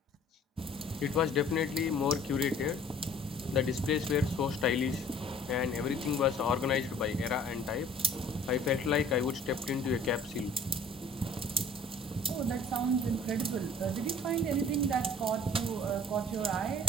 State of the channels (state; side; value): normal; both; correlation 0.52